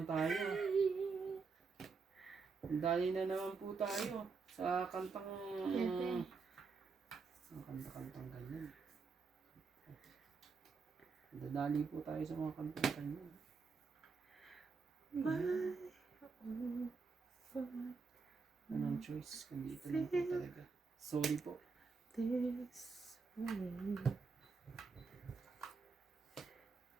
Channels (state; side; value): quieter; left; 4.8 dB